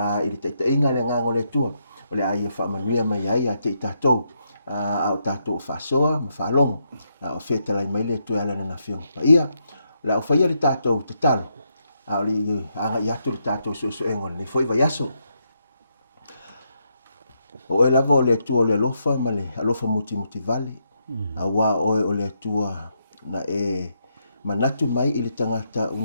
I le taitainga le ngango le tua o le aia whaamanuia mai ai a te i tātou a o tātou o whaasoa ma whaalongo o whetalai mai le tua ala na whiongpa ia la o whaia le tātou te talo a o li anga i atu le tātou suenga nei foi vai aso o e lava o le atua o le alofa ma le alofa muti vale a wā oe o le atua na manatu mai I le tangata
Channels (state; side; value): inverted; both; correlation -0.79